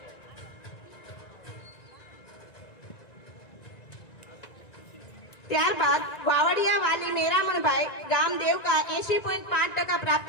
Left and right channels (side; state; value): right; late; 1.9 ms